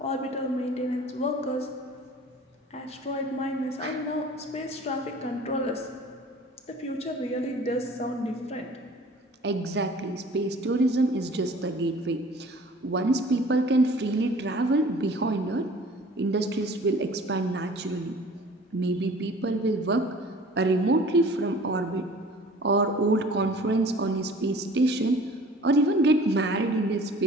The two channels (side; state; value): both; normal; correlation 0.47